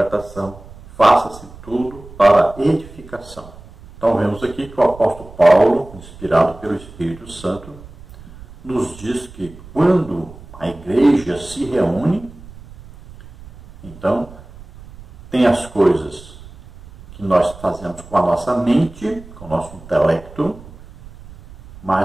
Faça-se tudo para edificação. Então vemos aqui que o apóstolo Paulo, inspirado pelo Espírito Santo, nos diz que quando a igreja se reúne, então tem as coisas que nós fazemos com a nossa mente, com o nosso intelecto,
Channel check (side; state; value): right; noise; rumble, 19 dB below the sound